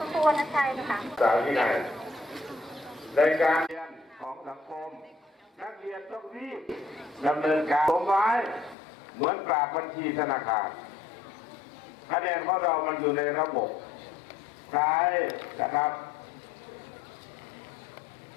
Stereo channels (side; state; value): right; drops out; at 8.8 s